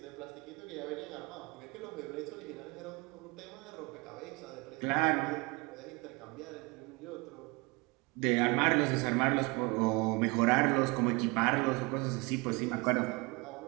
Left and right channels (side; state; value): left; quieter; 26.7 dB